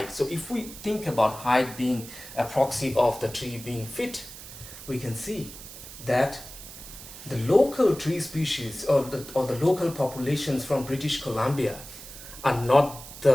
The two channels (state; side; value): noise; right; hiss, 14 dB below the sound